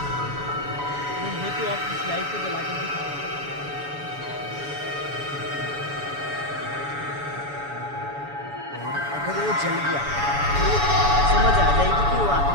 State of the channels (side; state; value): left; late; 7.0 ms